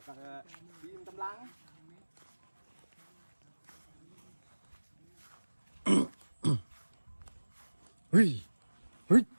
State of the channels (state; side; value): inverted; both; correlation -1.00